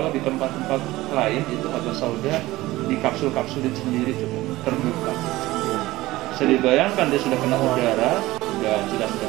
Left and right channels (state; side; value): quieter; left; 17.8 dB